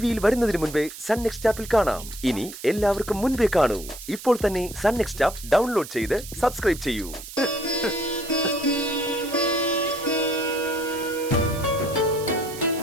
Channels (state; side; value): noise; right; hiss, 13 dB below the sound